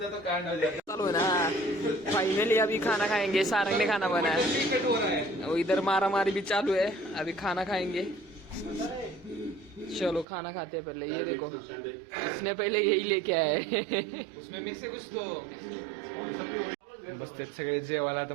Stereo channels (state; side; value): drops out; left; at 10.2 s